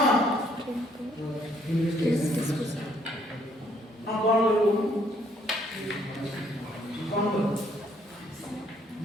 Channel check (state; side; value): normal; both; correlation 0.66